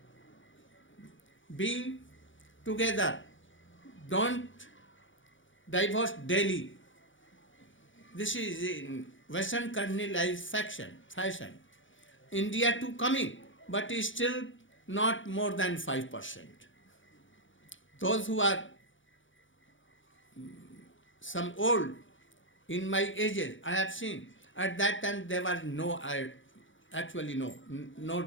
Be together. Don't divorce daily. This is in Western colonialized fashion. India too coming, but is still not more than 5%. Those who are some old, in my ages, I have seen, at that time there was no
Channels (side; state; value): right; late; 0.56 ms